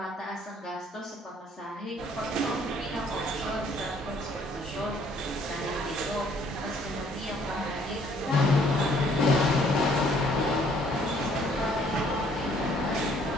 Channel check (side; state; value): both; normal; correlation 0.62